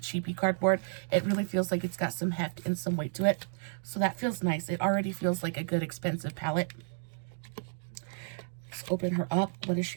cheapy cardboard. It really feels like it's got some heft and some weight to it. So that feels nice. It already feels like a good, expensive palette. Let's open her up. What does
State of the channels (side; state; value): left; silent; digital silence